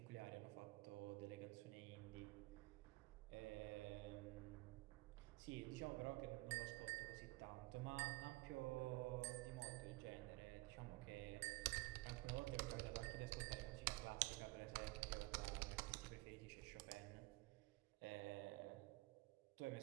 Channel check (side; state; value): left; quieter; 21.7 dB